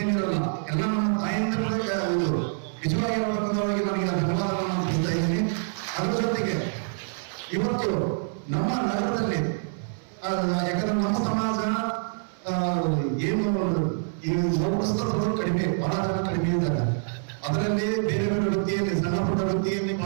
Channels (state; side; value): silent; left; 59 dB below the other